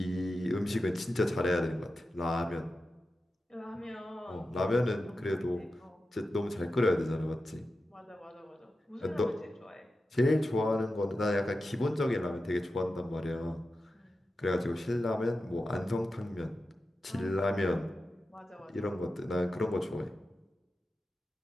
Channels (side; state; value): both; normal; correlation 0.92